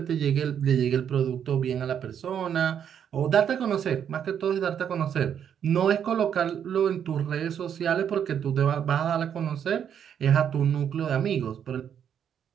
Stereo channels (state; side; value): quieter; left; 8.6 dB